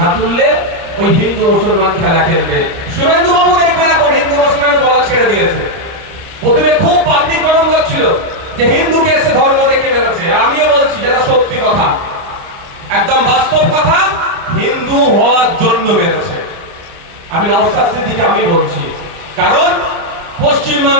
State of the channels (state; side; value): late; left; 30 ms